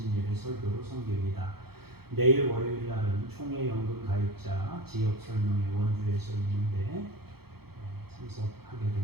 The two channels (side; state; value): left; late; 0.96 ms